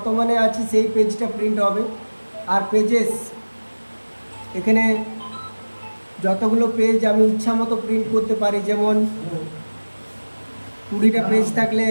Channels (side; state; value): both; inverted; correlation -1.00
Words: আছি সেই পেজটা প্রিন্ট হবে। আর পেজেস, এখানে যতগুলো পেজ আমি ইচ্ছা মতো প্রিন্ট করতে পারি। যেমন 20টা পেজ থাকলে